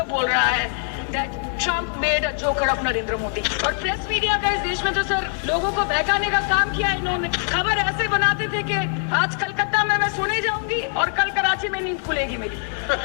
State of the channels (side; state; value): right; silent; 62 dB below the other